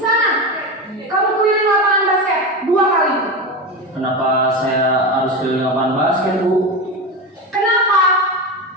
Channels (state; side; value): normal; both; correlation 0.19